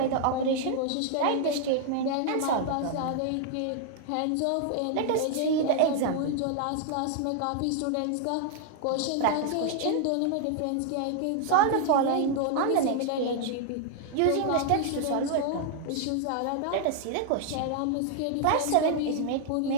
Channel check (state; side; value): different; both; correlation 0.00